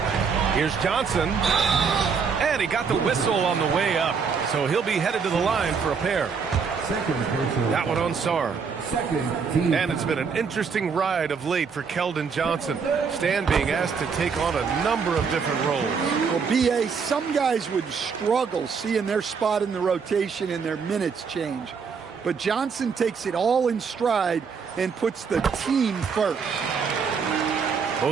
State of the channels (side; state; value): left; quieter; 5.8 dB